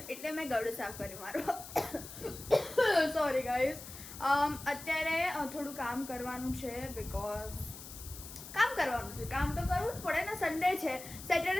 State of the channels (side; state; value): left; noise; hiss, 13 dB below the sound